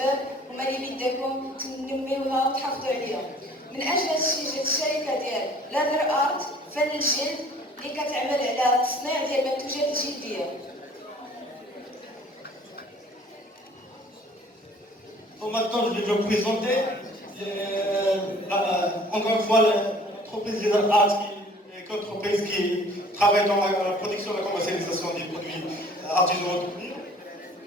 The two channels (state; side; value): normal; both; correlation 0.52